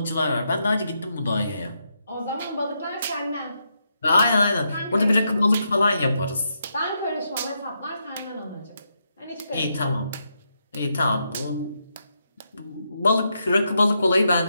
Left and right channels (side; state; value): both; inverted; correlation -0.81